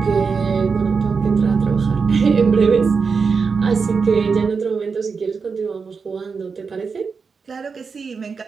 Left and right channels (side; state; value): left; quieter; 5.3 dB